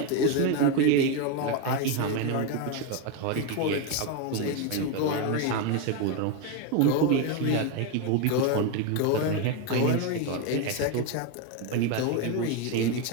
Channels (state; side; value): different; both; correlation 0.02